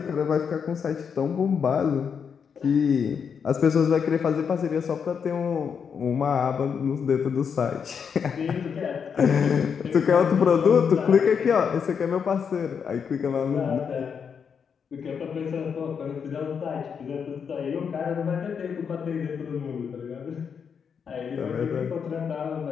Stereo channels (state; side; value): quieter; right; 6.7 dB